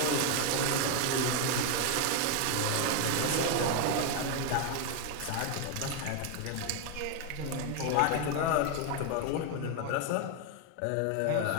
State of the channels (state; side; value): different; both; correlation 0.01